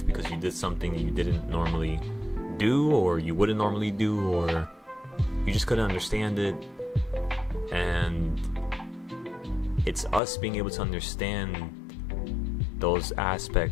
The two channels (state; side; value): drops out; right; at 10.2 s